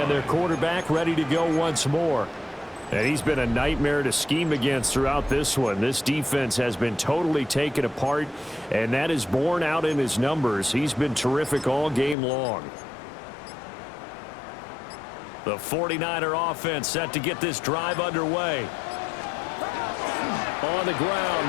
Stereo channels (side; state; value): right; drops out; at 12.2 s